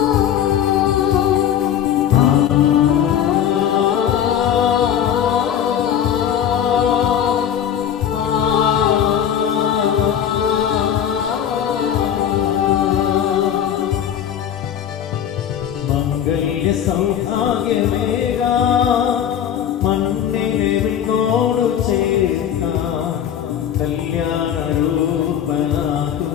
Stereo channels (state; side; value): quieter; right; 9.6 dB